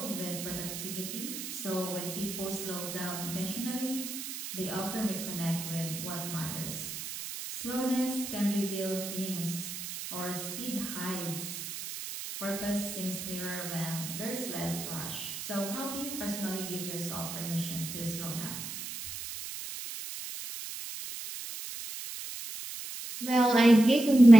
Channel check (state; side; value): noise; right; hiss, 8 dB below the sound